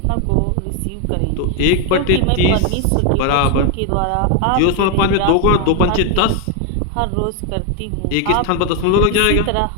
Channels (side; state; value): both; different; correlation 0.01